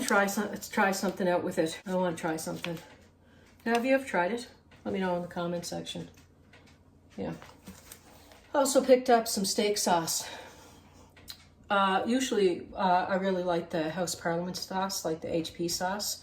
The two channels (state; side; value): identical; both; correlation 1.00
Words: try something out with it. I want to try something. Now, have you ever tried it? Let me know in the comment section. Yeah. I also picked up some steak sauce. Usually I really like the House Parliament sauce, like the HP